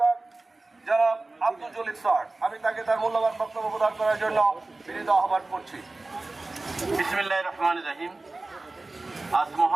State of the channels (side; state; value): left; quieter; 3.2 dB